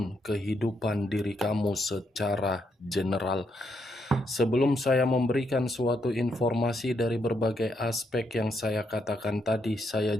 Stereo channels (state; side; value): normal; both; correlation 0.78